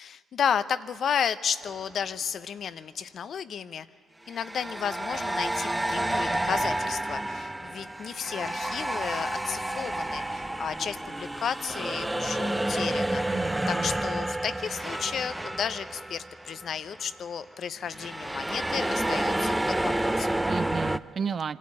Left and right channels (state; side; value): normal; both; correlation 0.87